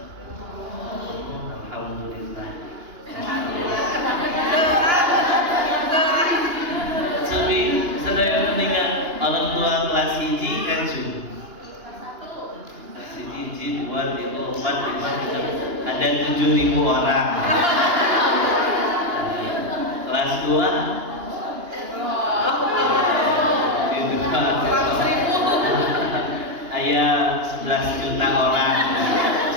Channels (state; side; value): late; left; 2.9 ms